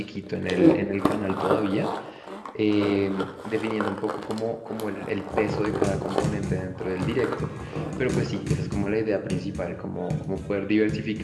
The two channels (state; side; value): identical; both; correlation 1.00